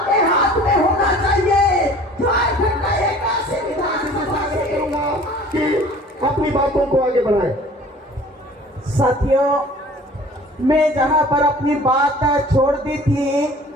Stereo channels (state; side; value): normal; both; correlation 0.48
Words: हाथ में होना चाहिए। झारखंड का 81 विधानसभा कि अपनी बातों को आगे बढ़ाएं। साथियों, मैं जहां पर अपनी बात छोड़ दी थी